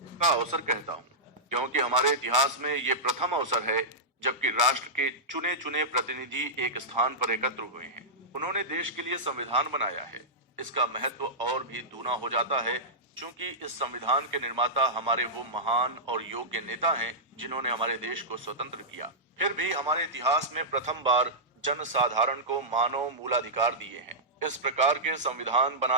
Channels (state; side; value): normal; both; correlation -0.12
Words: का अवसर कहता हूँ, क्योंकि हमारे इतिहास में ये प्रथम अवसर है जबकि राष्ट्र के चुने चुने प्रतिनिधि एक स्थान पर एकत्र हुए हैं। उन्होंने देश के लिए संविधान बनाया है। इसका महत्व और भी दूना हो जाता है क्योंकि इस संविधान के निर्माता हमारे वो महान और योग्य नेता हैं जिन्होंने हमारे देश को स्वतंत्र किया। फिर भी हमारे इतिहास में प्रथम बार जन साधारण को मानव मूलाधिकार दिए हैं। इस प्रकार के संविधान